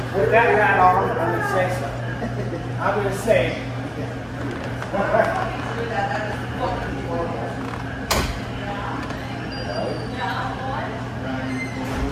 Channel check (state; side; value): identical; both; correlation 1.00